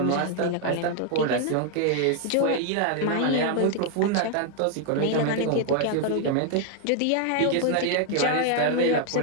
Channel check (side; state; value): both; different; correlation 0.00